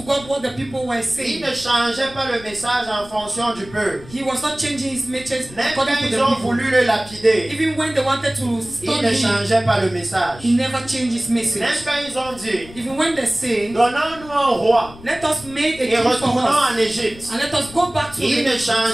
what the people were Il saying. ne changeait pas le message en fonction du peuple. He was not changing his message Même according quand to the ils ont people. voulu le lapider, Even when they wanted to il stone ne him, changeait pas le message. he never changed his Même message. quand ils ont dit, Even when they say, donnons-nous un roi let us make a et king for retournons us en Égypte, and let us go back to il ne the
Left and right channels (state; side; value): noise; left; rumble, 19 dB below the sound